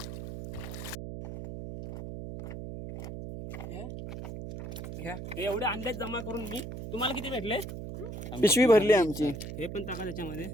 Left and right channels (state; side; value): noise; right; hum, 8 dB below the sound